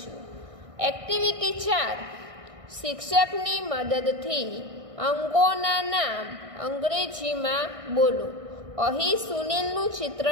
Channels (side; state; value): left; late; 1.6 ms